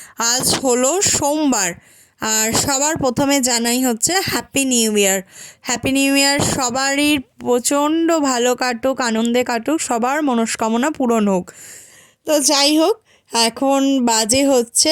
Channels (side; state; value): both; identical; correlation 1.00